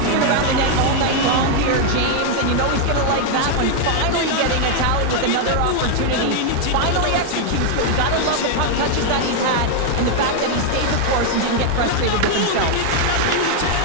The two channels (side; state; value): both; different; correlation 0.00